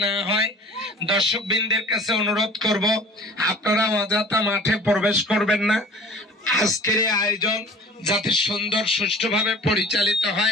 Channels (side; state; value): both; normal; correlation 0.45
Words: না হয়, দর্শক বৃন্দের কাছে অনুরোধ করব, আপনারা অযথা মাঠে প্রবেশ করবেন না। আজকের এই আয়োজন যাতে সুন্দর সুষ্ঠুভাবে পরিচালিত